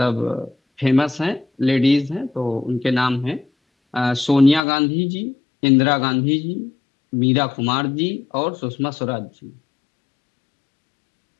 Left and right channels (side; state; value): right; drops out; at 4.6 s